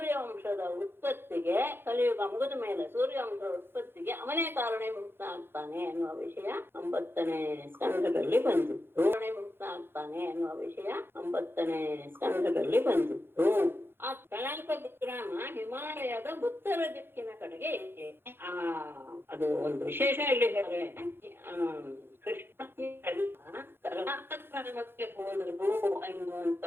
ಉತ್ಪತ್ತಿಗೆ ಕಲಿಯುಗ ಮುಗಿದ ಮೇಲೆ ಸೂರ್ಯವಂಶದ ಉತ್ಪತ್ತಿಗೆ ಅವನೇ ಕಾರಣೀಭೂತ ಆಗ್ತಾನೆ ಎನ್ನುವ ವಿಷಯ 9ನೇ ಸ್ಕಂಧದಲ್ಲಿ ಬಂದಿತ್ತು. ಕಾರಣೀಭೂತ ಆಗ್ತಾನೆ ಎನ್ನುವ ವಿಷಯ 9ನೇ ಸ್ಕಂಧದಲ್ಲಿ ಬಂದಿತ್ತು. ಆ ಕಲಾಪ ಗ್ರಾಮ ಹಿಮಾಲಯದ ಉತ್ತರ ದಿಕ್ಕಿನ ಕಡೆಗೆ ಇದೆ. ಅದು ಒಂದು ವಿಶೇಷ ಇಲ್ಲಿ ಹೇಳಿದ್ರೆ ಕೃಷ್ಣ ಕಲಾಪ ಗ್ರಾಮಕ್ಕೆ ಹೋದರು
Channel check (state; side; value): late; left; 0.11 ms